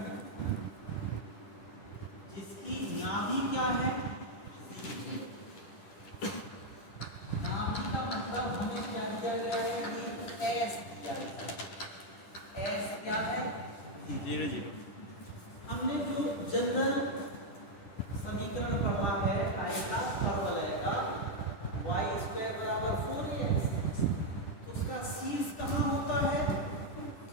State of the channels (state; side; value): late; right; 10 ms